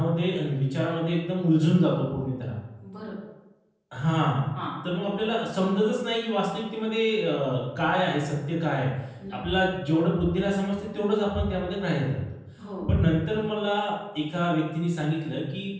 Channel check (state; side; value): identical; both; correlation 1.00